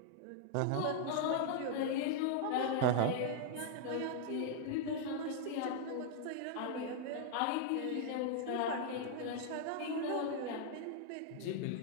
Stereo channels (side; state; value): both; different; correlation 0.00